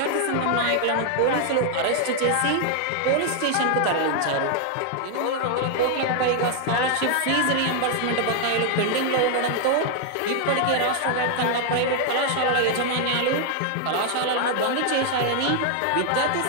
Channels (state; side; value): different; both; correlation 0.00